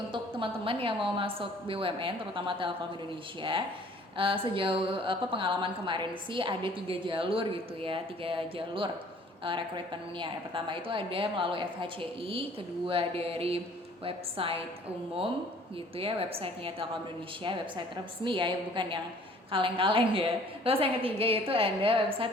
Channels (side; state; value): both; normal; correlation 0.54